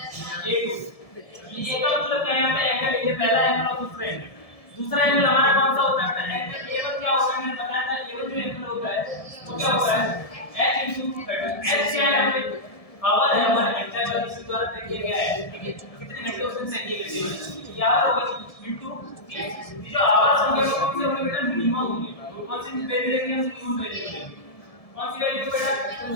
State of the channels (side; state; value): right; late; 1.7 ms